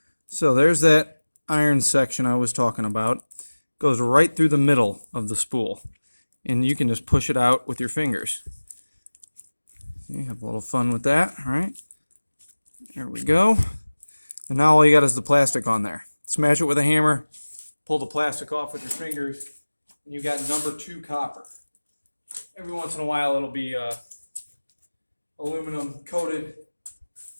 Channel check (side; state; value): both; inverted; correlation -1.00